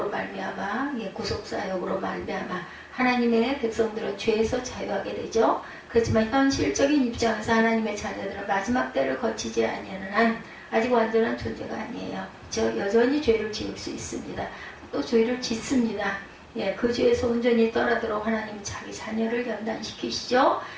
말미암아 구속사역으로 말미암아 하나님의 백성들은 죄에서 자유하게 되죠. 그렇지만 현실적인 입장에서 하나님의 자녀들은 마지막 때를 거치지 아니하는 한 아직 완전한 존재가 아니에요. 여전히 죄를 지을 수 있습니다. 또 죄를 짓습니다. 그 죄에서 온전히 떠나도록 하나님 자기 자녀를 연단시키시죠.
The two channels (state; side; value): identical; both; correlation 1.00